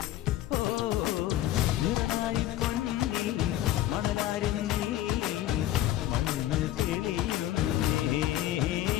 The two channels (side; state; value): right; quieter; 13.9 dB